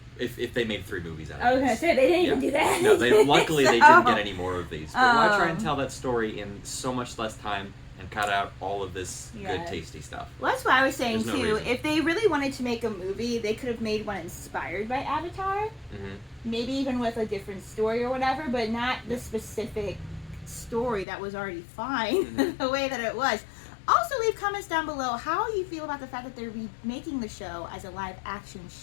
If they made 3 movies out of it. I was going to say, they didn't even do that. No, luckily they didn't get any more of these. But why try and tell that story in so much less time and cut out all of this good, tasty stuff? Well, that's what I was saying, There's no too. reason. If they really wanted to make a movie, they could have made one inspired by Avatar. Mm-hmm. Maybe even with a different story or whatever, but not the specific story that was already fine the way that it was. Also, leave comments down below how you feel about the fact that they're remaking the show as a live-action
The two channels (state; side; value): drops out; right; at 21.1 s